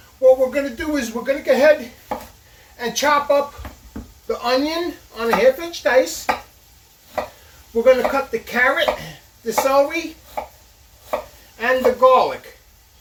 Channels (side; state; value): both; identical; correlation 1.00